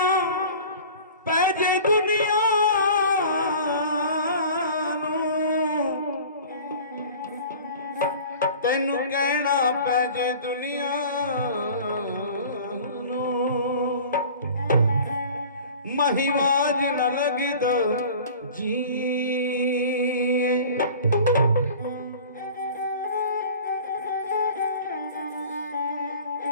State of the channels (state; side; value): inverted; both; correlation -0.43